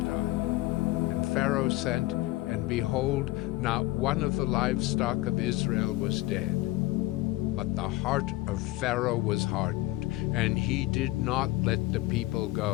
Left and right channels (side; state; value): right; quieter; 18.6 dB